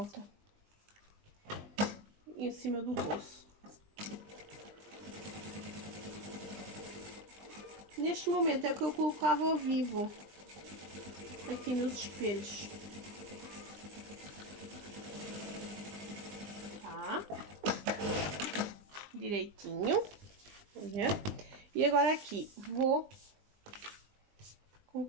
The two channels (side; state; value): left; late; 20 ms